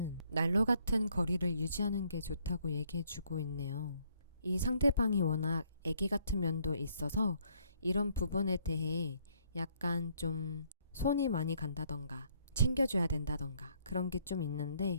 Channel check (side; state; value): both; inverted; correlation -0.67